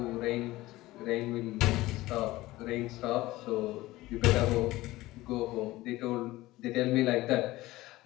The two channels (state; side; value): quieter; right; 18.1 dB